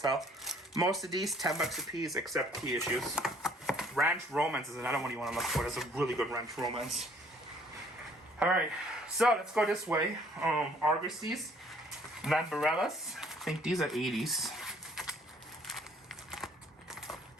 Most of these $10 a piece, except key issues. Ranch Romance is another one you want to look for. There's a really good Ranch Romance. All right, so let's go this way. Argosies, Lambarellas. I think these are 80s.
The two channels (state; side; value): normal; both; correlation 0.60